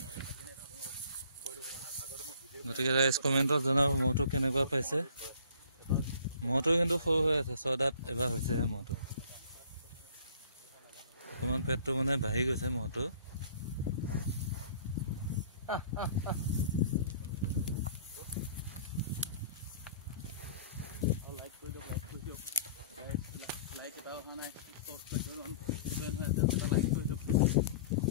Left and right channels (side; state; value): both; inverted; correlation -0.51